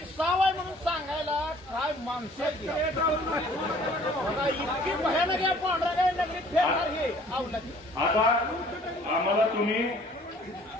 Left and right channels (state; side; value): normal; both; correlation 0.54